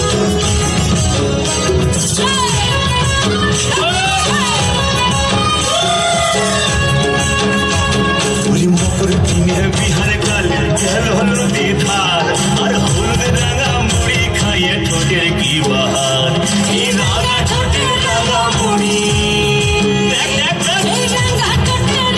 বিহারে কালে গেল নদী ধার আর হলুদ রাঙা মুড়ি খাইয়ে ঠোঁটের কি বাহার এই রাঙা ঠোঁটের রাঙা মুড়ি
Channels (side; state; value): both; identical; correlation 1.00